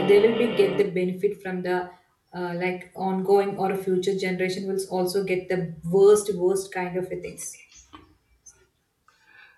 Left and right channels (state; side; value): identical; both; correlation 1.00